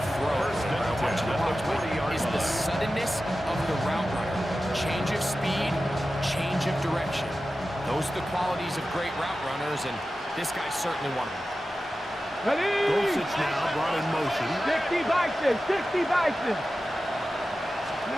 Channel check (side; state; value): both; normal; correlation 0.94